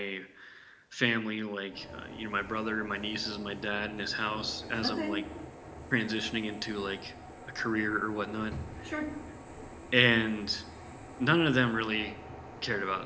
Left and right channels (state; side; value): identical; both; correlation 1.00